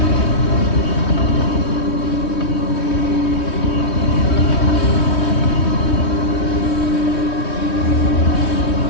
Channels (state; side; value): late; right; 3.2 ms